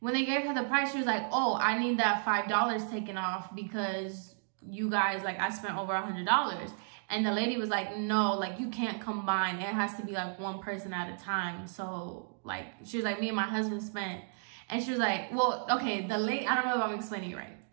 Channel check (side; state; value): left; silent; digital silence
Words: they gave her the price, she was like, oh, I need that $5 taken off because you guys, like, I spent over $100. And the lady was like, no, like, you can't combine. It has to be like one person at a time. So, like, she was like, me and my husband spent. And she was like, well, okay, the lady, I don't know if I'm explaining it right.